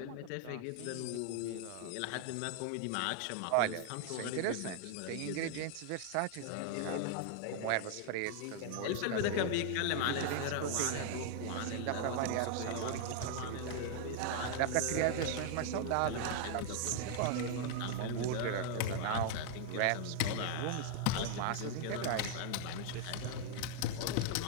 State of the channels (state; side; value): different; both; correlation 0.00